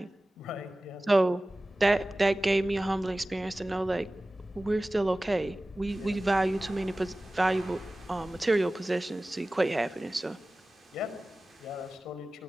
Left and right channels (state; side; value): normal; both; correlation 0.97